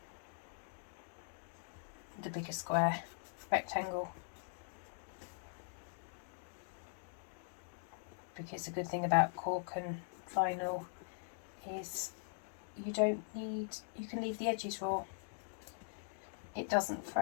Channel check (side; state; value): right; silent; digital silence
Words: the bigger square rectangle. Because the good thing about cork and vinyl is you can leave the edges raw. It doesn't